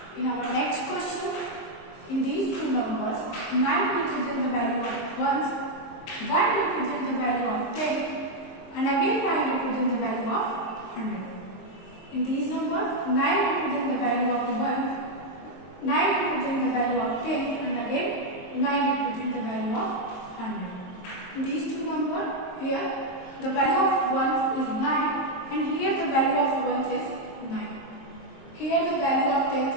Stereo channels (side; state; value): right; late; 23 ms